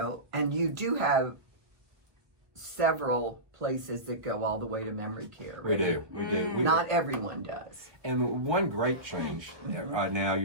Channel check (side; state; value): left; late; 1.1 ms